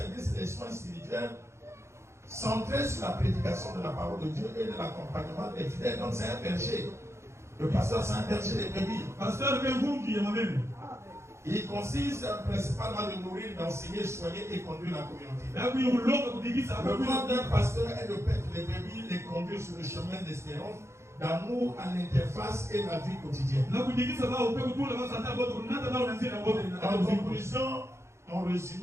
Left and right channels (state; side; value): late; left; 0.13 ms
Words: des soins spirituels centré sur la prédication de la parole de Dieu et de l'accompagnement des fidèles. Donc c'est un berger. Le pasteur, c'est un berger des brebis. Pasteur, qui est moi-même. Il consiste principalement de nourrir, d'enseigner, soigner et conduire la communauté. Le rôle d'un pasteur est de paître les brebis, les conduire sur le chemin d'espérance, d'amour à l'interface et la vie quotidienne. En conclusion, en